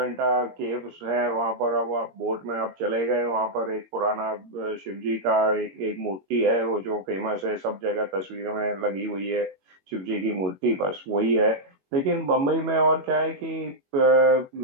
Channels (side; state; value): left; late; 22 ms